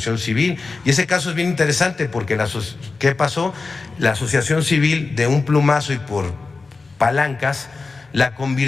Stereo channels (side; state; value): right; quieter; 4.0 dB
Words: civil. Y ese caso es bien interesante porque ¿qué pasó? La asociación civil de un plumazo y por palancas la